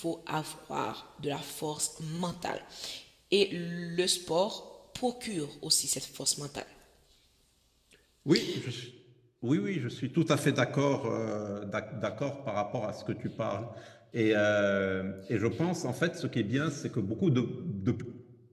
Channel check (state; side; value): identical; both; correlation 1.00